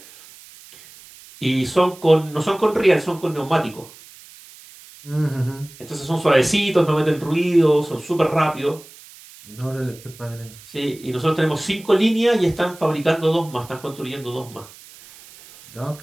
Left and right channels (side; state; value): right; noise; hiss, 21 dB below the sound